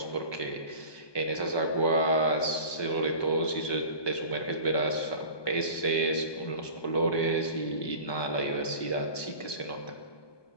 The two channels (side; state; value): right; late; 1.2 ms